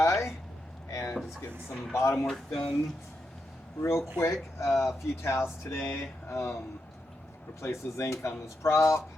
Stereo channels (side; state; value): both; normal; correlation 0.85